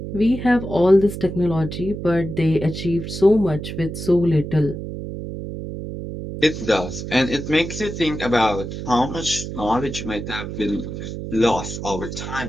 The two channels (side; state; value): right; noise; hum, 7 dB below the sound